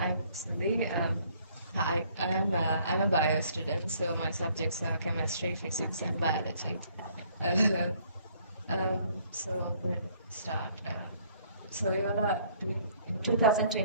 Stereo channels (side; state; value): both; inverted; correlation -0.62